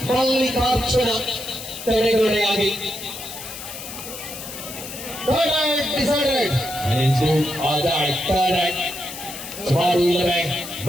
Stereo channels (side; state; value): left; noise; hiss, 11 dB below the sound